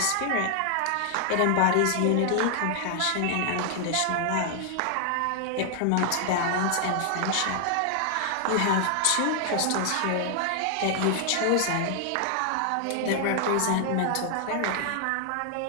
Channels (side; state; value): both; different; correlation 0.00